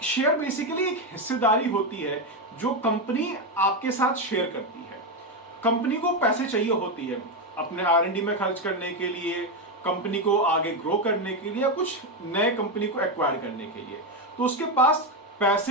शेयर बेसिकली एक हिस्सेदारी होती है जो कंपनी आपके साथ शेयर करती है। कंपनी को पैसे चाहिए होती है अपने आर&डी में खर्च करने के लिए, कंपनी को आगे ग्रो करने के लिए या कुछ नए कंपनी को एक्वायर करने के लिए। तो उसके पास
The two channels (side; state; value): both; normal; correlation 0.09